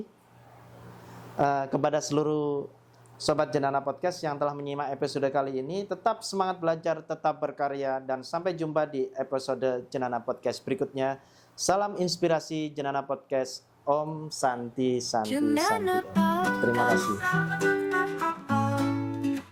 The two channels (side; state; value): both; identical; correlation 1.00